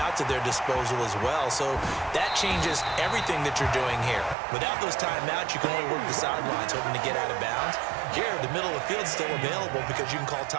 at their disposal as well, so that changes everything that you're doing here. Without those timeouts, you can only work the sidelines hoping to get out of bounds. Here, the middle of the field is still available because you can call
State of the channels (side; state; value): left; drops out; at 4.4 s